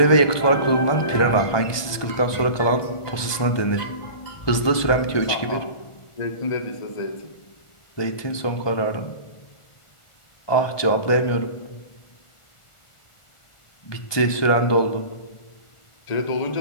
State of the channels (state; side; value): late; right; 1.2 ms